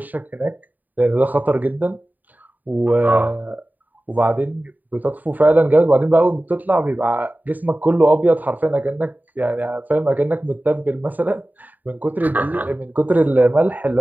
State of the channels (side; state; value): left; late; 0.085 ms